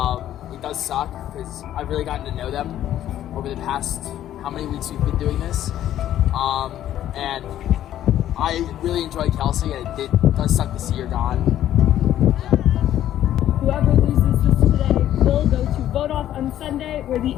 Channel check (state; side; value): quieter; right; 12.0 dB